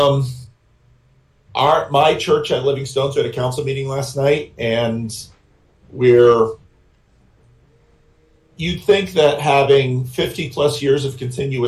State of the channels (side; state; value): both; identical; correlation 1.00